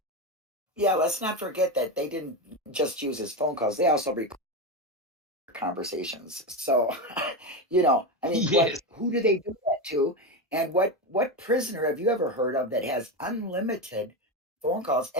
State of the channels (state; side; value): normal; both; correlation 0.15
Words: Yeah, let's not forget that they didn't just use his phone calls. They also record conversations. So, Yes. who do they do that to? And what prisoner have you ever heard of that has unlimited phone calls